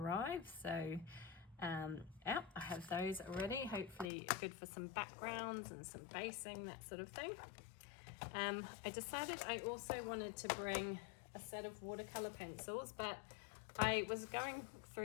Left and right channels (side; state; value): right; drops out; at 4.1 s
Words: So yeah, I have those ready, hopefully good for some backgrounds and some basing, that sort of thing. I decided I also wanted to bring a set of watercolor pencils, but I was going